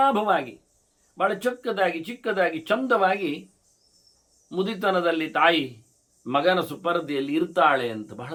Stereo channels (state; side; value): identical; both; correlation 1.00